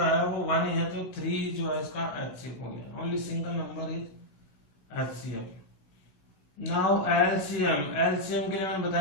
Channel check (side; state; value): right; late; 16 ms